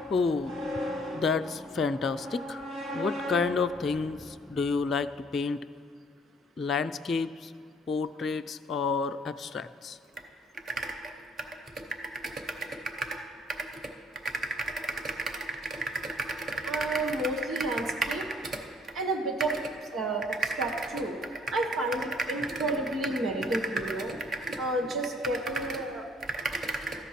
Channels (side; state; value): both; normal; correlation 0.60